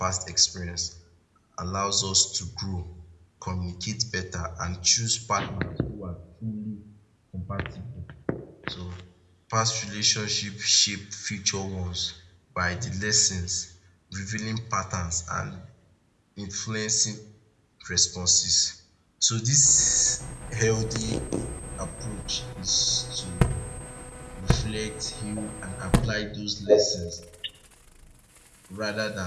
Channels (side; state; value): both; identical; correlation 1.00